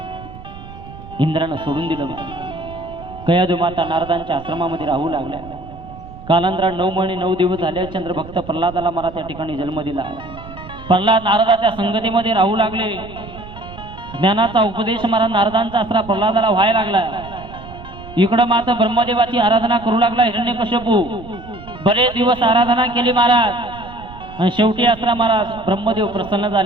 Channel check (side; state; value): right; noise; rumble, 16 dB below the sound